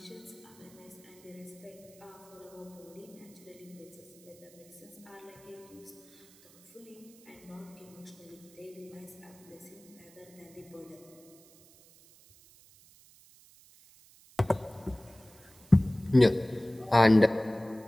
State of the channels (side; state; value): right; noise; hiss, 25 dB below the sound